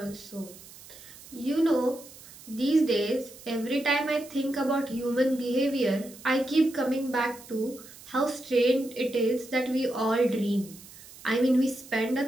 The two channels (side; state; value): right; noise; hiss, 19 dB below the sound